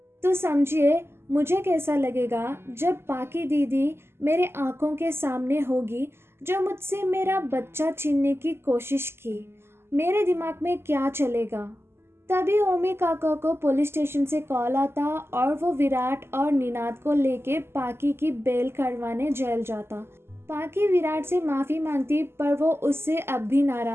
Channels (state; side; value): late; left; 0.12 ms